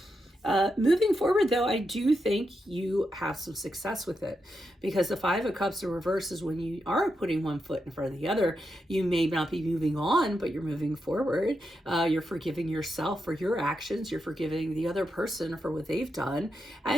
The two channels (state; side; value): normal; both; correlation 0.85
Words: Moving forward, though, I do think you have some success with it because the Five of Cups in reverse is when you are putting one foot in front of the other. You may not be moving on, but you're moving forward. You're forgiving yourself for your actions. You're forgiving the other person for what they've done.